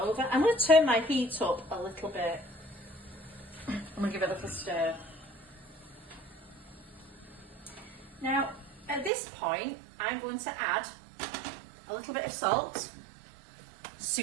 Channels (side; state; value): left; drops out; at 9.1 s